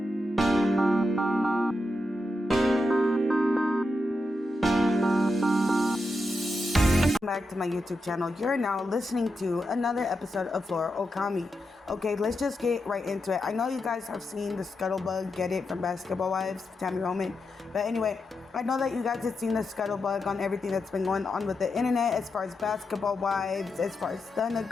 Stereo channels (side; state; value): both; normal; correlation 0.87